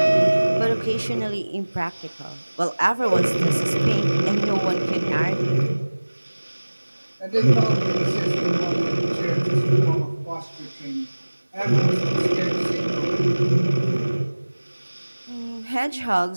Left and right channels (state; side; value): inverted; both; correlation -1.00